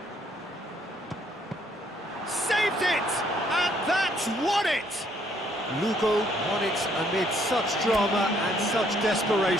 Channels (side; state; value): both; normal; correlation 0.67